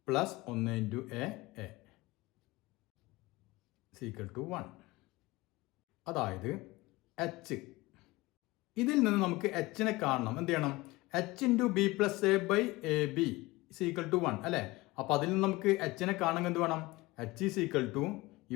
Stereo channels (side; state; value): right; quieter; 20.9 dB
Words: plus 1 into A = 1. അതായത് h. ഇതിൽ നിന്ന് നമുക്ക് എച്ചിനെ കാണണം. എന്ത് ചെയ്യണം? h into B plus A by A B = 1 അല്ലേ. അപ്പോൾ അതിൽ നിന്ന് നമുക്ക് എച്ചിനെ കാണണമെങ്കിൽ എന്ത് വേണം? h =